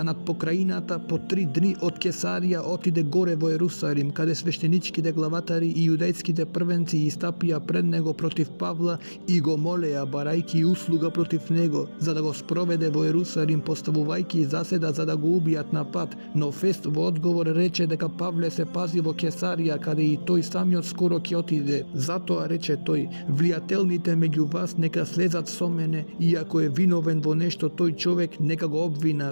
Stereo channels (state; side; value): inverted; both; correlation -1.00